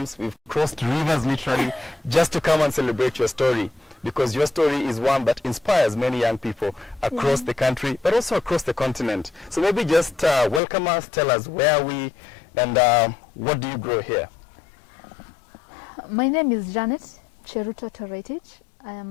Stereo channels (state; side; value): drops out; right; at 10.6 s